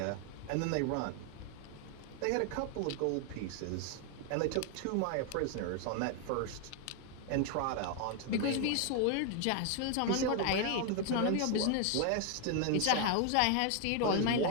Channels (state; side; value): different; both; correlation 0.01